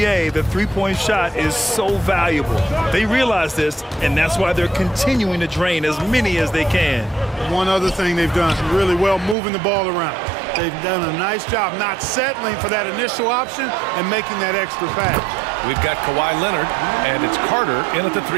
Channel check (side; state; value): left; drops out; at 9.3 s